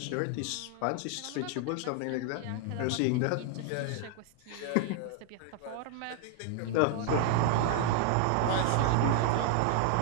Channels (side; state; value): both; different; correlation 0.00